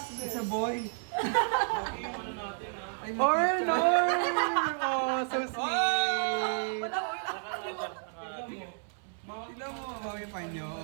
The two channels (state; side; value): silent; left; 57 dB below the other